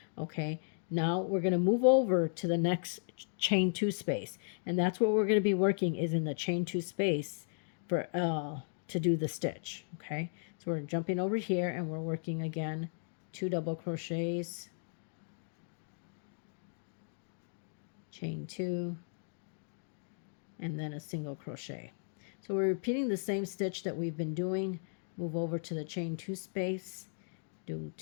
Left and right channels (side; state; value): right; silent; digital silence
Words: Okay, now we're going to move over to the next chain 2 space, and that's what we're going to be working is in the chain 2 space for to do the stitch. Okay, so we're jumping over here and we're working again 2 double crochets, chain 2, and then a single crochet. So we're repeating the same stitch that we've been doing. Move over to the chain 2 space, do